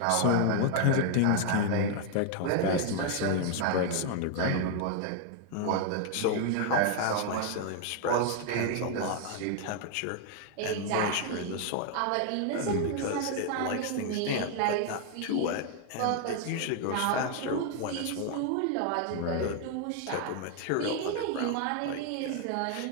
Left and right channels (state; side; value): different; both; correlation 0.00